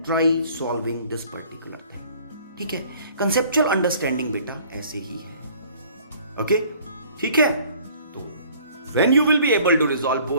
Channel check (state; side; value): inverted; both; correlation -0.54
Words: try solving this particular thing. ठीक है, conceptual understanding बेटा ऐसे ही है। Okay, ठीक है। तो when you will be able to resolve